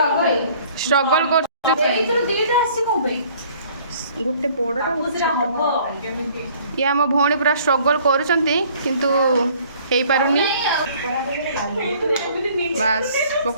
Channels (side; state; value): both; inverted; correlation -0.56